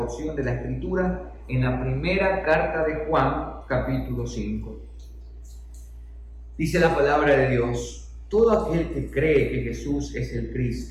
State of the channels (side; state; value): both; identical; correlation 1.00